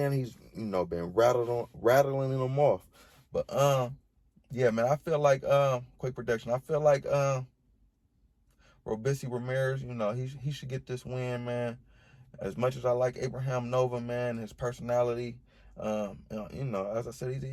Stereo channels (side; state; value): both; identical; correlation 1.00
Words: he's been rattling them off. But yeah, man, I feel like quick prediction. I feel like Robeisy Ramirez, he should get this win, man. As much as I like Abraham Nova, man, his personality. As I said,